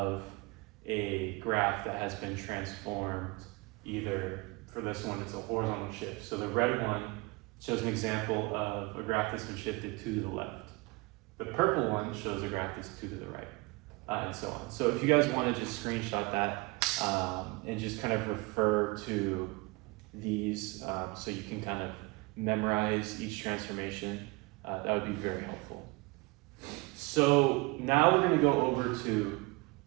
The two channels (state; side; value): quieter; left; 25.0 dB